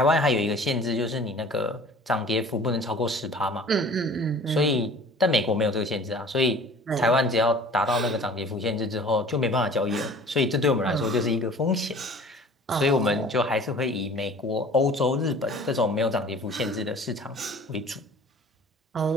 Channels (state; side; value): normal; both; correlation 0.46